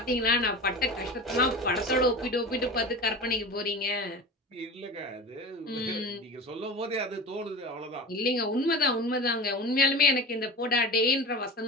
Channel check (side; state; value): both; normal; correlation 0.31